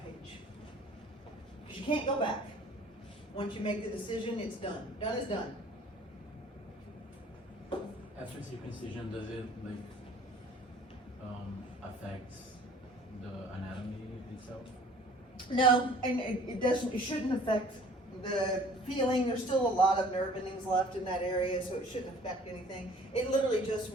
page. Because you can't go back. Once you make the decision, it's done. Done is done. After circumcision, does it affect the anatomy itself? No, and it doesn't. It shouldn't affect the feeling. There's still a lot of nerve endings left in that area, so it shouldn't affect anything. It literally just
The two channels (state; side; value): normal; both; correlation 0.52